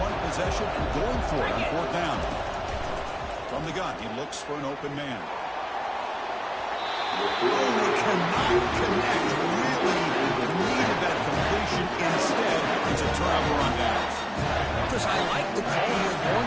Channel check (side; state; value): both; identical; correlation 1.00